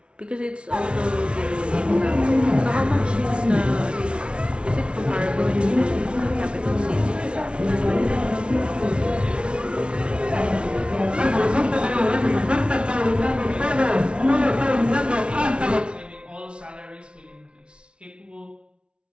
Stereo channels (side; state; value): left; late; 0.058 ms